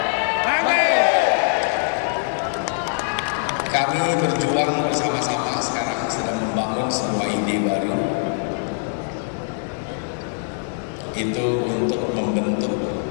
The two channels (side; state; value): right; silent; digital silence